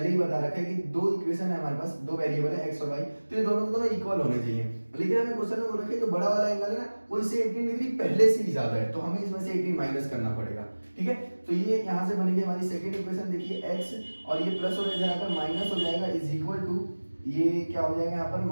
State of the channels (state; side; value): inverted; both; correlation -1.00